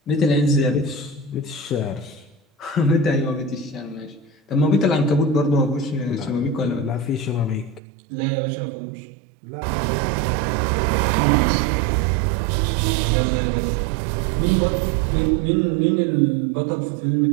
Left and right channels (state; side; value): drops out; left; at 7.8 s